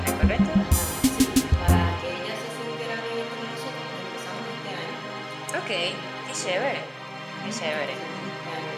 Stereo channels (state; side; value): identical; both; correlation 1.00